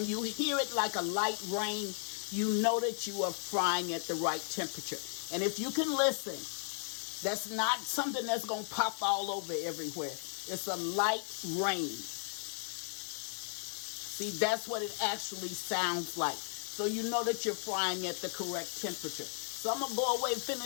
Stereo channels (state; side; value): silent; right; 54 dB below the other